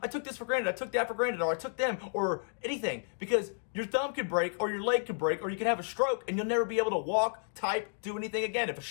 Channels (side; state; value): right; silent; digital silence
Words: I took this for granted, I took that for granted, or I took them, or anything. Because your thumb could break, or your leg could break, or you could have a stroke, and you'll never be able to walk, type, do anything again. If a